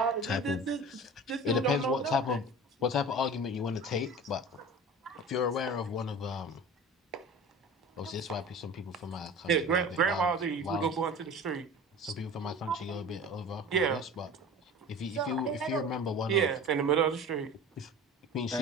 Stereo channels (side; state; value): both; normal; correlation 0.37